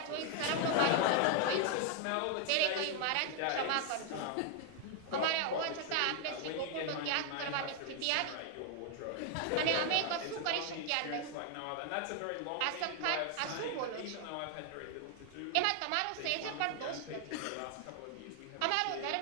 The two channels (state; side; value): different; both; correlation 0.00